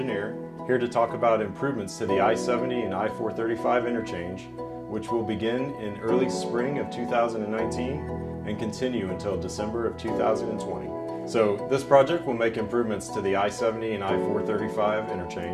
here to talk about improvements to the I-70 and I-435 interchange, which will begin in early spring of 2019 and continue until December of 2020. So this project will make improvements to the I-70 and I-435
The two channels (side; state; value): both; identical; correlation 1.00